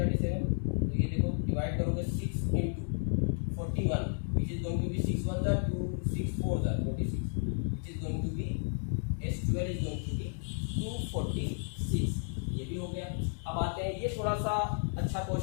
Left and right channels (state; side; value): silent; right; 56 dB below the other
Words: तो ये देखो डिवाइड करोगे 6 into 41 which is going to be 6 1 जा 2 6 4 जा 46 which is going to be S12 is going to be 246। ये भी हो गया। अब आते हैं, ये थोड़ा सा अच्छा